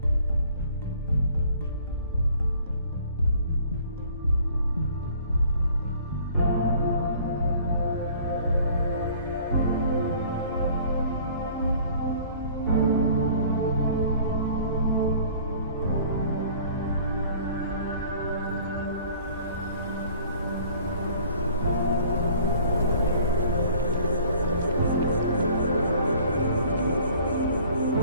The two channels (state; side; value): inverted; both; correlation -0.52